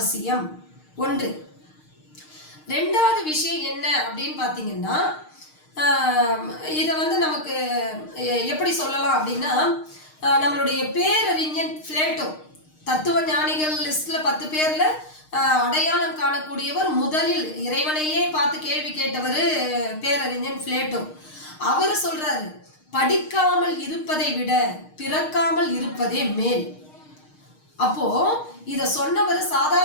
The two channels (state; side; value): late; right; 6.5 ms